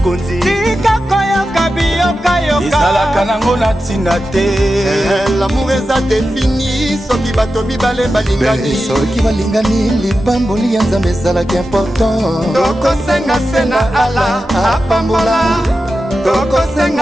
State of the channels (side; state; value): both; normal; correlation 0.91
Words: Tika koyoka babi yoka yoka ezalaka nango na ntina te. L'amour eza défini soki bato mibale balingani. Soki balingani libamboli ya nzambe ezalaki important. Tokosenga se na ala apambola,